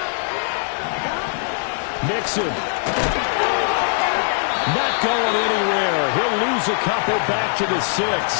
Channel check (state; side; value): silent; right; digital silence